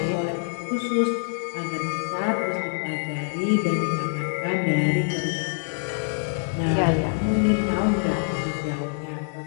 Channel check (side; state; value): right; silent; 60 dB below the other